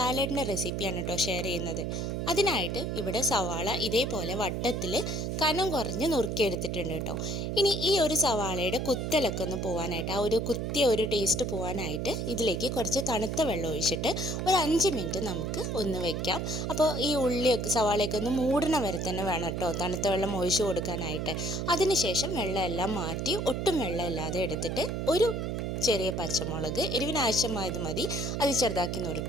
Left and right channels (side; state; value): right; noise; hum, 2 dB below the sound